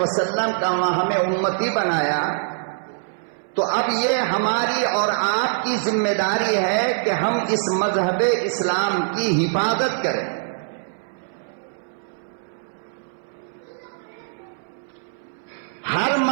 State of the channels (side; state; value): left; silent; 61 dB below the other